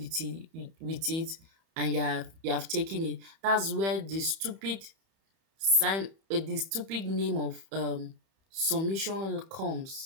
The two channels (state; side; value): late; left; 31 ms